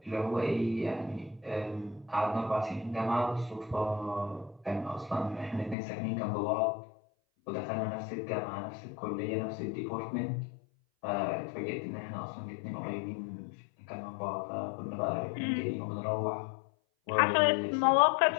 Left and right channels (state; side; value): drops out; right; at 5.8 s